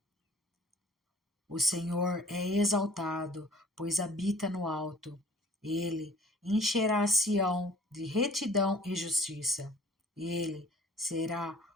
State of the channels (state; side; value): normal; both; correlation 0.51